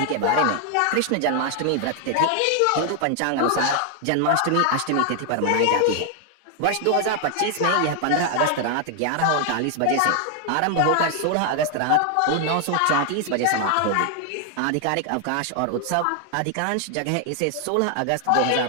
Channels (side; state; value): both; different; correlation 0.00